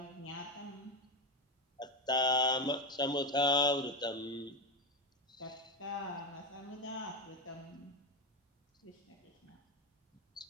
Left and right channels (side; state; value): both; normal; correlation 0.13